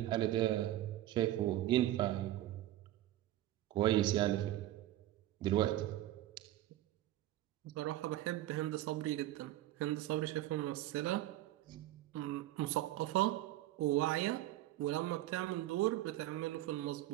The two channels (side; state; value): left; quieter; 14.6 dB